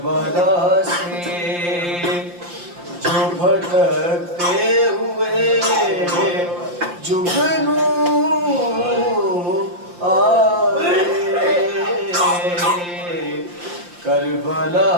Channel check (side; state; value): left; late; 5.7 ms